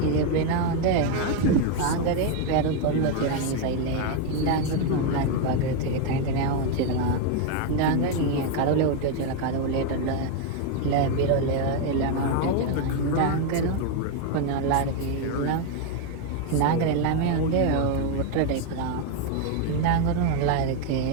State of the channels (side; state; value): both; different; correlation 0.01